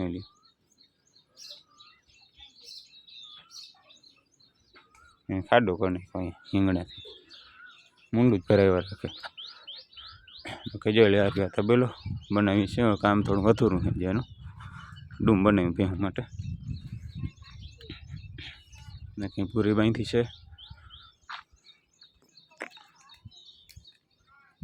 લ્યો। ખાડો કરી નાખ્યો અહીંયા હિંગણાથી, મૂંડું જ ભરાવ્યા રાખે। કે જોઈ લે આ તબેલો બનાવી છે, કામ થોડું અધૂરું છે જેનું ડૂમ બનાવ્યું ભેંસ માટે। ને કંઈ પૂરી બાંધી છે।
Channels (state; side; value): identical; both; correlation 1.00